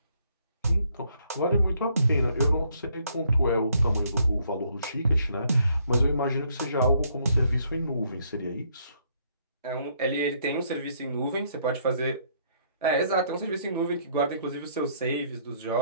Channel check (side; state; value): both; inverted; correlation -0.68